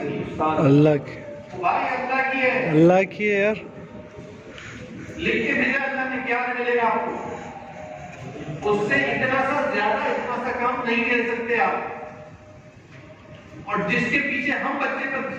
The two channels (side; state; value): both; identical; correlation 1.00